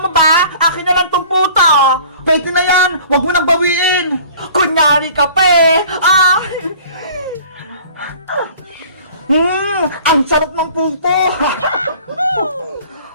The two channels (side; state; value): both; inverted; correlation -0.48